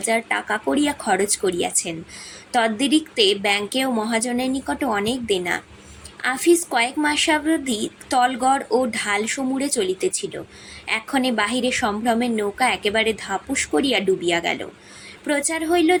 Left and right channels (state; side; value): identical; both; correlation 1.00